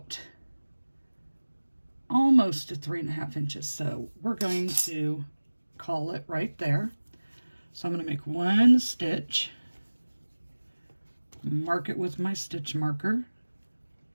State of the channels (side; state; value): both; inverted; correlation -1.00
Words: almost to 3.5 inches. So we're going to call it right there. So I'm going to make 1 stitch, mark it with my stitch marker,